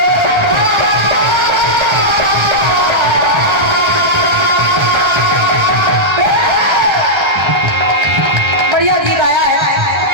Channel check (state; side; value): late; left; 1.3 ms